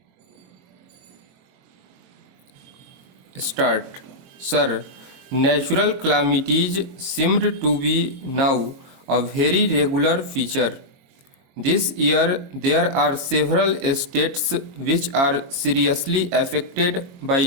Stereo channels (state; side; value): late; left; 22 ms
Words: Start. Sir, natural calamities seemed to be now a very regular feature. This year, there are several states which are seriously affected by